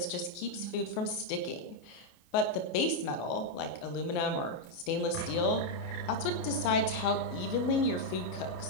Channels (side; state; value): right; late; 28 ms